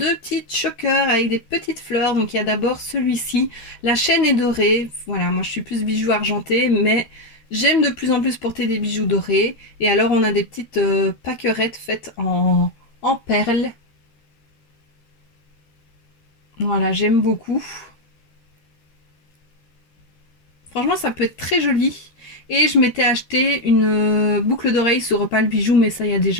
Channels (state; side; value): late; right; 13 ms